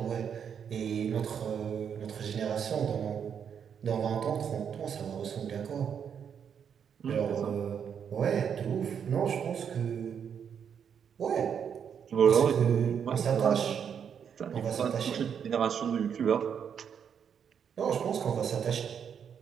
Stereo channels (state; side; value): quieter; left; 7.7 dB